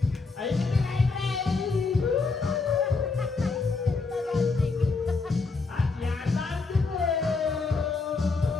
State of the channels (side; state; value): right; quieter; 4.1 dB